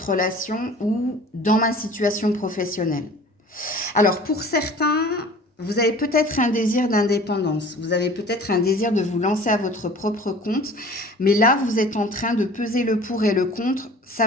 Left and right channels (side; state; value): both; normal; correlation 0.45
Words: relation ou dans ma situation professionnelle. Alors, pour certains, vous avez peut-être un désir d'indépendance, vous avez peut-être un désir de vous lancer à votre propre compte, mais là, vous êtes en train de peser le pour et le contre,